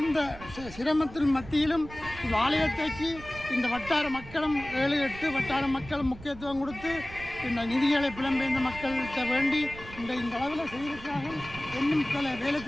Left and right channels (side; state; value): right; noise; rumble, 15 dB below the sound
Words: சிரமத்தின் மத்தியிலும் இந்த ஆலயத்தைக்கு இந்த வட்டார மக்களும் 7-8 வட்டார மக்களும் முக்கியத்துவம் கொடுத்து இந்த நிதிகளை புலம்பெயர்ந்த மக்கள்கிட்ட வேண்டி இந்த அளவில் செய்திருக்கிறார்கள். இன்னும் பல வேலை